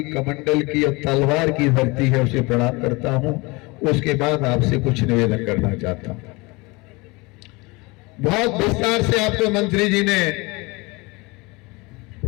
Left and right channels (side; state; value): right; quieter; 25.1 dB